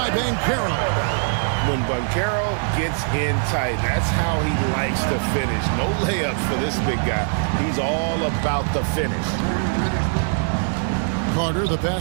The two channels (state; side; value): silent; left; digital silence